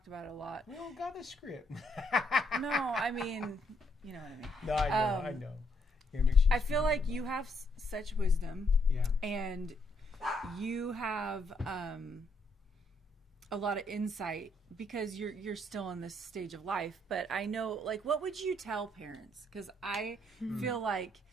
about it a lot. We don't got a script. No, I mean, you know what I mean. No, I know. I feel like you have such wisdom, and you have a lot of insight because you're still in this stage of life. But I know, like, what would you tell parents? Because I feel like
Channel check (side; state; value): both; normal; correlation 0.73